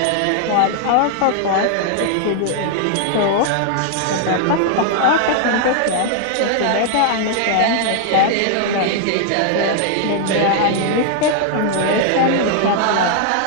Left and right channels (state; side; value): different; both; correlation 0.00